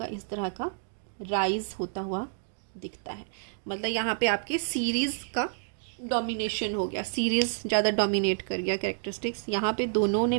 इस तरह का राइज होता हुआ दिखता है। मतलब यहाँ पे आपके सीरीज़ का डोमिनेशन हो गया, सीरीज़ ज़्यादा डोमिनेट कर गया कैरेक्टरिस्टिक्स। यहाँ पे दोनों ने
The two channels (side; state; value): left; silent; digital silence